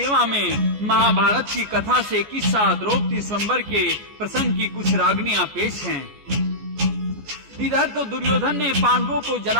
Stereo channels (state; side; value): late; left; 14 ms